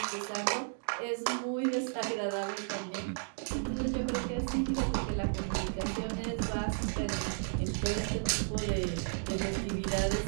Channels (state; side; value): silent; left; digital silence